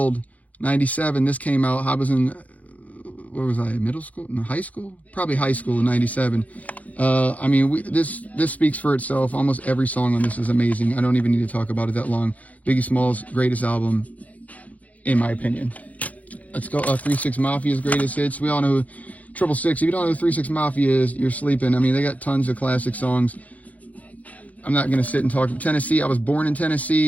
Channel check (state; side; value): late; right; 0.072 ms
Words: 97. This came out. I was in... Where was I? Middle school? No, high school? Probably high school in 97. I mean, this speaks for itself. Almost every song on this is amazing. I don't even need to talk about it that long. Biggie Smalls' greatest album, in my opinion. Let's go. 3 6 Mafia's greatest hits. We all know who 666. If you don't know who 3 6 Mafia is, you're sleeping. I mean, they got tons of classic songs. I'm not going to sit and talk. Tennessee, I was born in